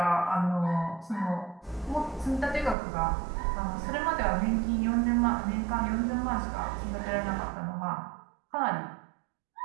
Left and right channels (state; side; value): drops out; left; at 2.8 s